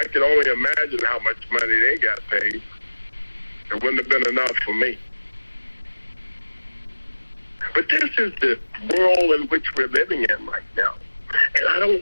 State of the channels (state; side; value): inverted; both; correlation -1.00